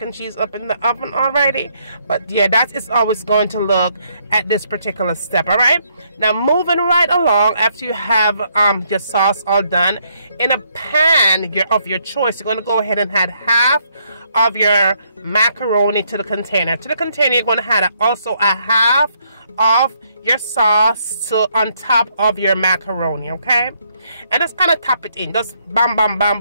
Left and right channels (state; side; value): inverted; both; correlation -0.72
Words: and cheese up in the oven already. But yeah, that is always going to look at this particular step, all right? Now moving right along, after you have your sauce all done, in a pan of your choice, you're going to go ahead and add half of your macaroni to the container. To the container, you're going to add also a half of your sauce on top of your macaroni, okay? And just kind of tap it in, just bam